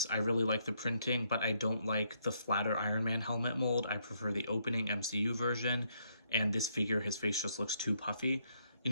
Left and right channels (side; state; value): both; inverted; correlation -0.73